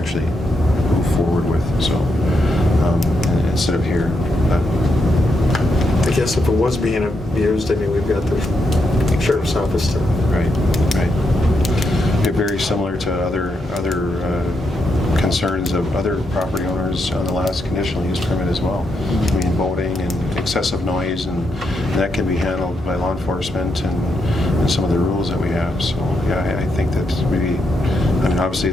move forward with. So instead of here. I guess if it was being abused, I mean, we've got the sheriff's office to. Right. They're very similar to other concerns of other property owners on the last conditional use permit as well. I mean, boating and excessive noise, and that can be handled by law enforcement and some of the rules that we have. So yeah, I think that maybe, obviously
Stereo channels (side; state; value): both; normal; correlation 0.81